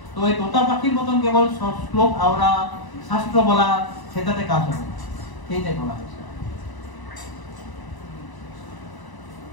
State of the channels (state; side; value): late; right; 1.0 ms